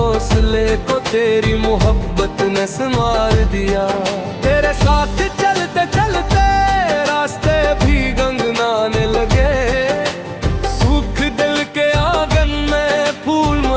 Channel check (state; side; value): identical; both; correlation 1.00